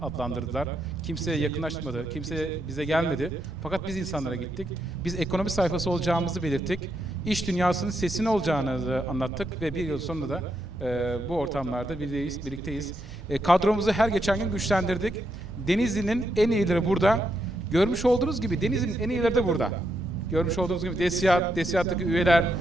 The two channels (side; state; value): both; normal; correlation 0.80